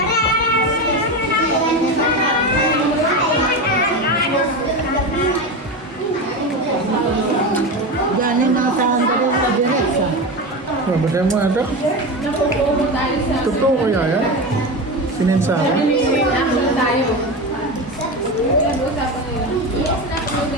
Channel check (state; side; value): normal; both; correlation 0.21